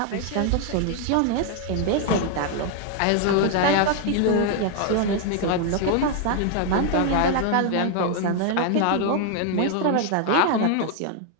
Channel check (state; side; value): different; both; correlation 0.00